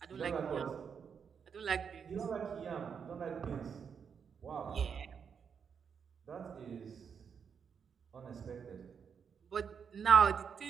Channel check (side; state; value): left; quieter; 6.8 dB